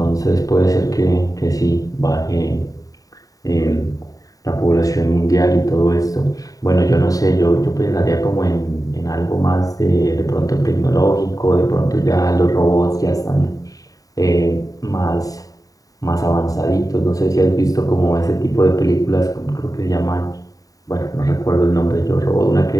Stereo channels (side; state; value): right; late; 0.17 ms